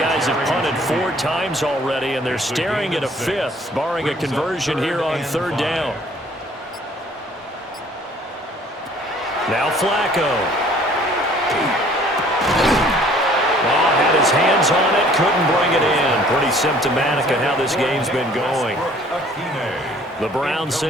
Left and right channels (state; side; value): normal; both; correlation 0.56